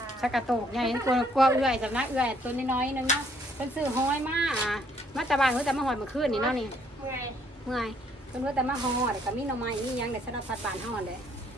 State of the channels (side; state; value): both; normal; correlation 0.66